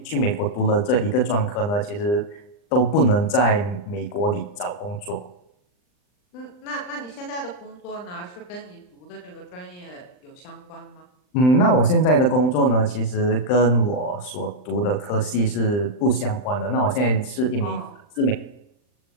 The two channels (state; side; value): late; right; 39 ms